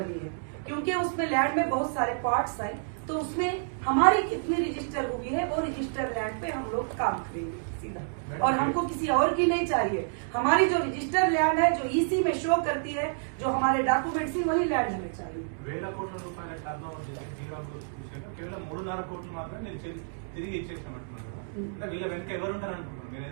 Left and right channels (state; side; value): silent; left; digital silence